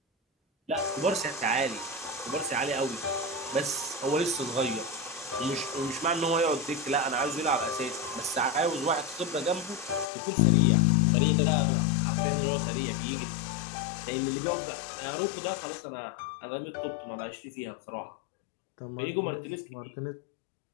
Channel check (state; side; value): drops out; right; at 10.1 s